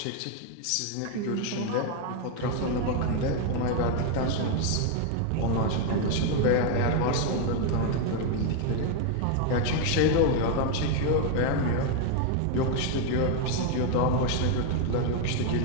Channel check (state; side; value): different; both; correlation 0.01